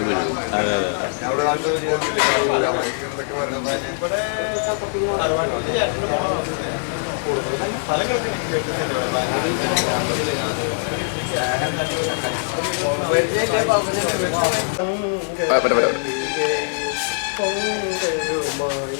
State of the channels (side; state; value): right; silent; digital silence